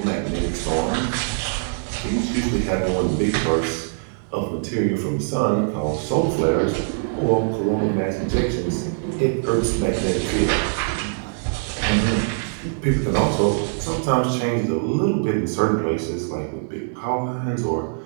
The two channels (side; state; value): left; silent; 62 dB below the other